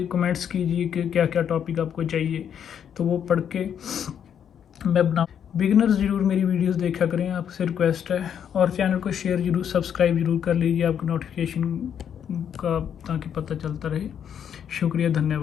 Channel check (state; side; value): quieter; right; 8.6 dB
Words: कीजिए कि क्या क्या टॉपिक आपको चाहिए, तो वो पढ़ के मैं बना। बिगिनर्स ज़रूर मेरी वीडियोस देखा करें, आपसे रिक्वेस्ट है, और चैनल को शेयर ज़रूर, सब्सक्राइब ज़रूर कर लीजिए आपको नोटिफिकेशन का, ताकि पता चलता रहे। शुक्रिया,